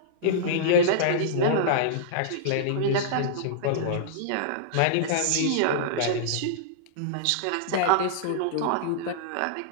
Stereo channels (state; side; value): different; both; correlation -0.02